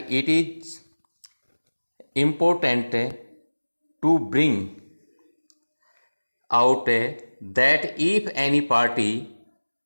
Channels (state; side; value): inverted; both; correlation -1.00